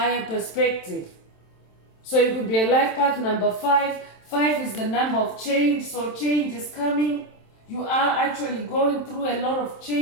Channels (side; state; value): right; late; 27 ms